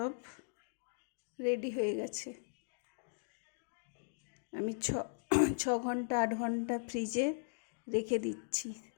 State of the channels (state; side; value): silent; right; digital silence